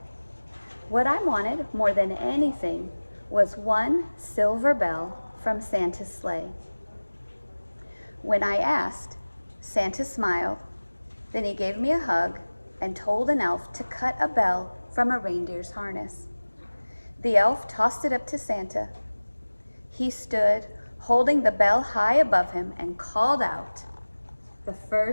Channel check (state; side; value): inverted; both; correlation -1.00